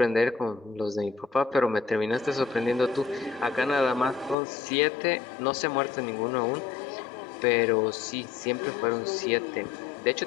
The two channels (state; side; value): drops out; right; at 4.4 s